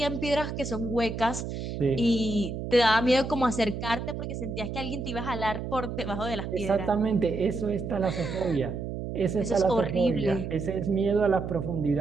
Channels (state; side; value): noise; right; hum, 6 dB below the sound